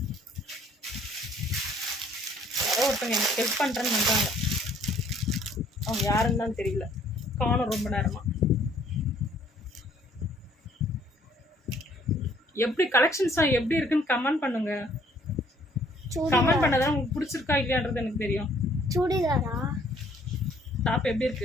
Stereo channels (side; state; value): both; normal; correlation 0.61